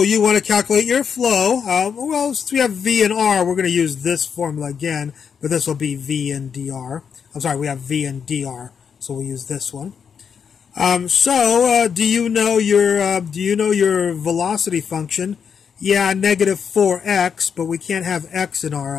you want to calculate your flow. Well, since we have v and r, we're going to use this formula again, but this will be v and dr. I'm sorry, we have v and dr, so we'll use this one. Do you know your velocity function? Yeah, negative 4x, but we can't have x in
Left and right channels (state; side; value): quieter; right; 6.9 dB